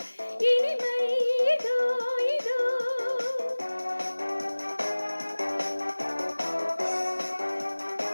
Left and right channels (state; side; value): inverted; both; correlation -1.00